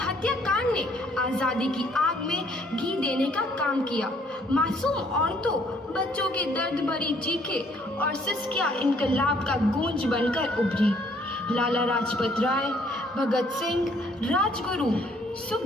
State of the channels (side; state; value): both; normal; correlation 0.63